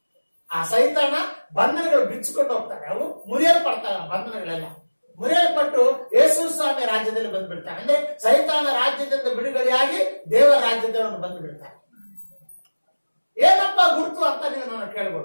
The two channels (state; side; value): inverted; both; correlation -1.00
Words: ಆ ಸೈತಾನ ಬಂಧನಗಳು ಬಿಚ್ಚಿಕೊಂಡು ಹೋಗ್ತಾರೆ, ಅವು ಮುರಿಯಲ್ಪಡ್ತವೆ. ಬಂಧನಗಳೆಲ್ಲ ಮುರಿಯಲ್ಪಟ್ಟು ಯೇಸು ಸ್ವಾಮಿ ರಾಜ್ಯದಲ್ಲಿ ಬಂದ್ಬಿಡ್ತಾರೆ. ಅಂದ್ರೆ ಸೈತಾನ ರಾಜ್ಯದಿಂದ ಬಿಡುಗಡೆಯಾಗಿ ದೇವರ ರಾಜ್ಯದಲ್ಲಿ ಬಂದು ಬಿಡ್ತಾರೆ. ಏನಪ್ಪ ಗುರುತು ಅಂತ ನೀವು ನಾನು